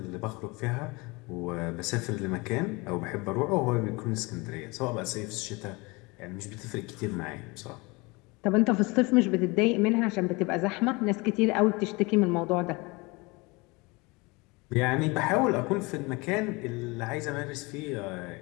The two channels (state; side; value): quieter; right; 25.7 dB